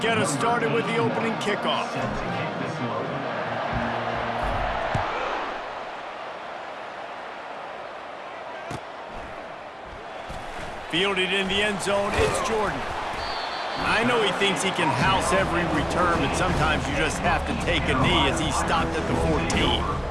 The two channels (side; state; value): both; identical; correlation 1.00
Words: us started with the opening kickoff. Fielded in the end zone, it's Jordan. I know he thinks he can house every return, but sometimes you just have to take a knee as he stopped at the 14.